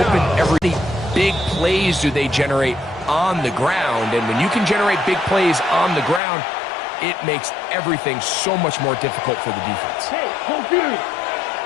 every big plays do they generate on the ground. And when you can generate big plays on the ground, it makes everything so much more difficult for the defense. Hey, hold period.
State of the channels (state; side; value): drops out; right; at 6.2 s